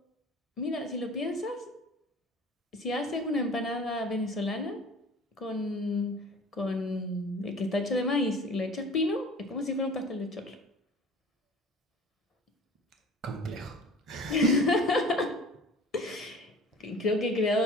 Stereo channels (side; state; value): both; normal; correlation 0.44